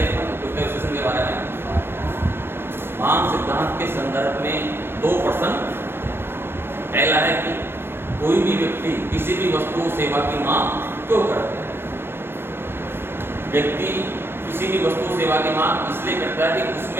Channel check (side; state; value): left; late; 0.11 ms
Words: अपन उपयोगिता विश्लेषण के बारे में मांग सिद्धांत के संदर्भ में दो प्रश्न। पहला है कि कोई भी व्यक्ति किसी भी वस्तु सेवा की मांग क्यों करता है। व्यक्ति किसी भी वस्तु सेवा की मांग इसलिए करता है कि